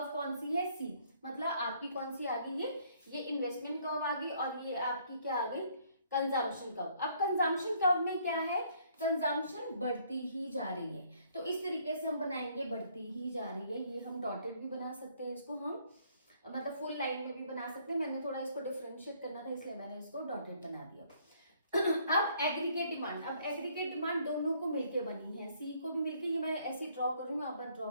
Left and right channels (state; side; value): inverted; both; correlation -0.65